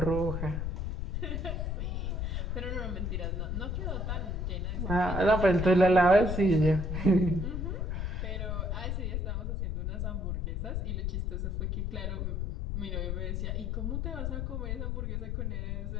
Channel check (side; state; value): left; noise; rumble, 1 dB below the sound